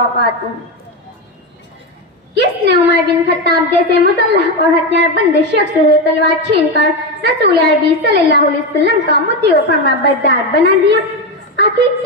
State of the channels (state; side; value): normal; both; correlation 0.13